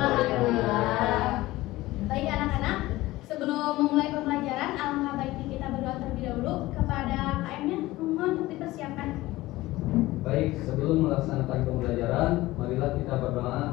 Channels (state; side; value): quieter; right; 18.1 dB